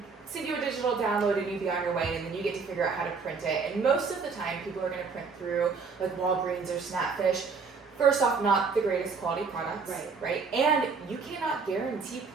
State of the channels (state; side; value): quieter; left; 5.1 dB